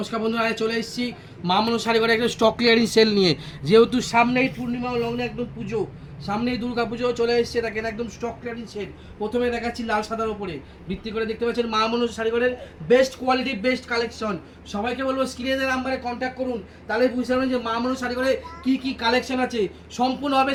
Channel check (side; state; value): both; identical; correlation 1.00